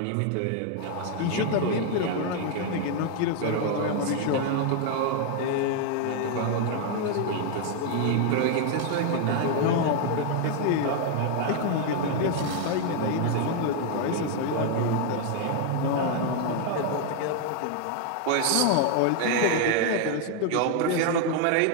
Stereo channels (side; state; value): both; different; correlation 0.00